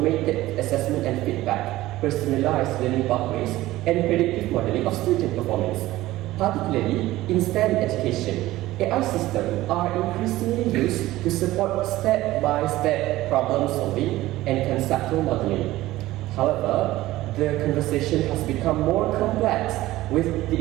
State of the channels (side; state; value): left; quieter; 16.7 dB